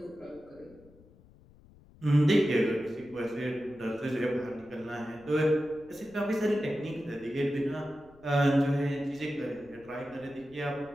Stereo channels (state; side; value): noise; left; rumble, 25 dB below the sound